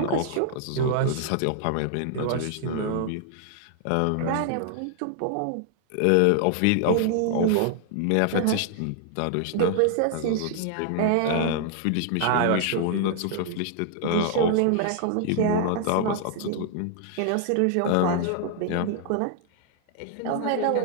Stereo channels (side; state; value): both; different; correlation 0.00